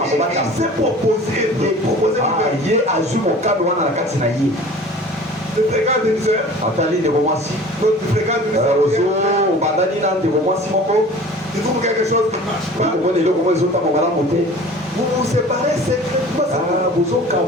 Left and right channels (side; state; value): both; normal; correlation 0.43